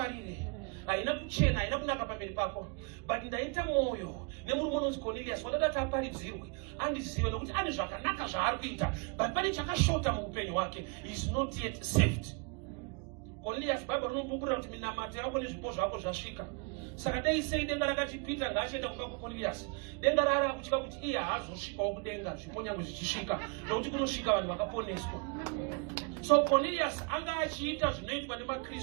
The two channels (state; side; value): quieter; left; 34.4 dB